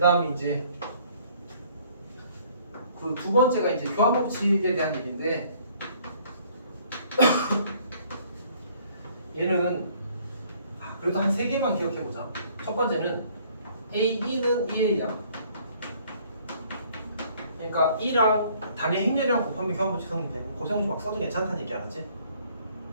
이제 그 두 번째가 이제 교환 법칙에 대한 얘기인데 얘는 그래도 한 3개만 기억해 보자. 첫 번째는 A2는 2A야. 그러니까 2랑 단위 행렬이랑 곱하면 교환 법칙 성립돼. 고생지 막 써도 괜찮다는 얘기 알았지?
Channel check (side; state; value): both; inverted; correlation -0.60